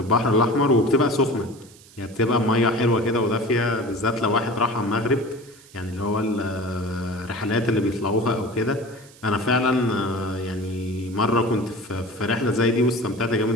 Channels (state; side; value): noise; right; hiss, 24 dB below the sound